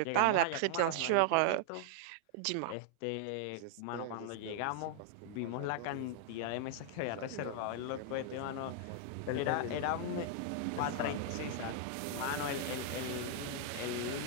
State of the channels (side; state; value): both; different; correlation -0.01